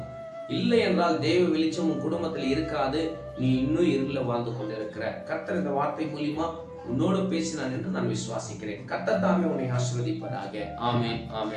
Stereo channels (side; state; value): both; identical; correlation 1.00